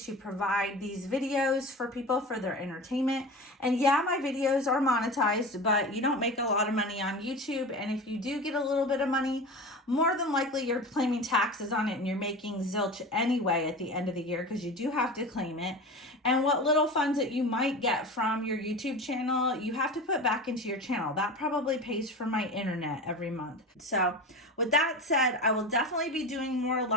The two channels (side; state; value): both; normal; correlation 0.30